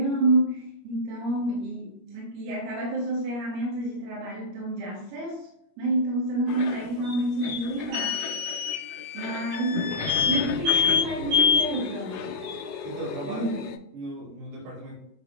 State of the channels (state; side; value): late; left; 21 ms